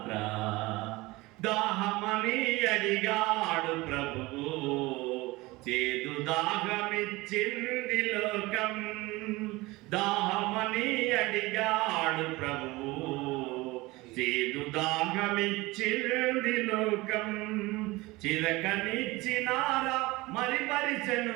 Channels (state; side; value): quieter; left; 21.3 dB